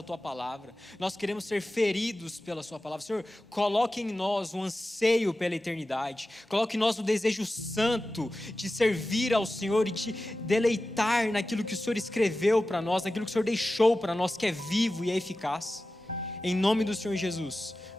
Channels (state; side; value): normal; both; correlation 0.94